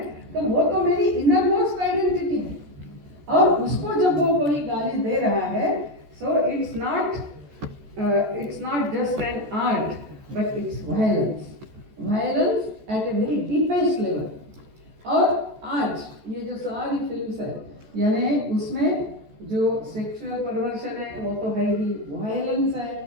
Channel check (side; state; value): left; late; 14 ms